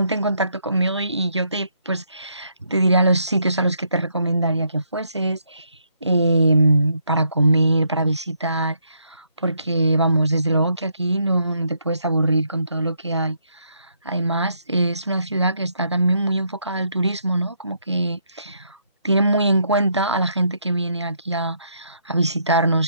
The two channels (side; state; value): both; inverted; correlation -0.74